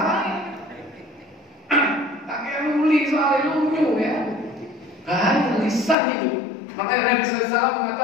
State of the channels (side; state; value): right; drops out; at 6.0 s